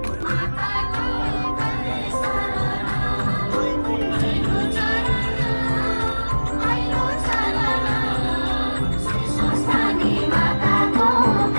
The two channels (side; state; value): both; inverted; correlation -1.00